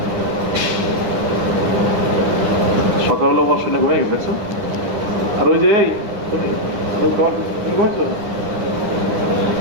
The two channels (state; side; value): late; left; 9.7 ms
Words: সকাল হলো বস শুনে ঘুমিয়ে গেছে, দেখছো? আর ওই যে এই তুমি ঘুমাইছো?